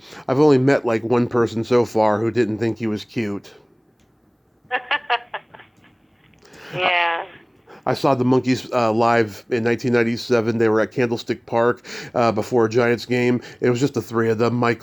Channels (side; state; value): both; identical; correlation 1.00